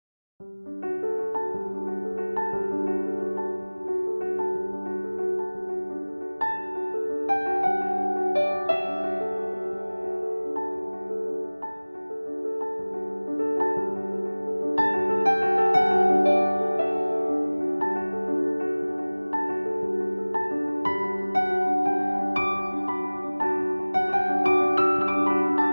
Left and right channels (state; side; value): inverted; both; correlation -1.00